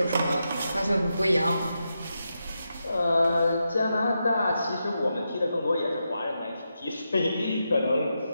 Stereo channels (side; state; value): both; inverted; correlation -0.86